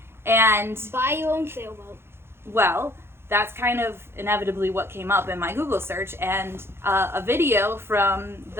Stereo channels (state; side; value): late; left; 0.12 ms